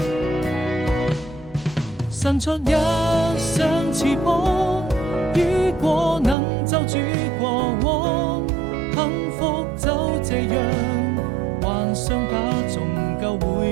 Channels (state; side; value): drops out; left; at 6.4 s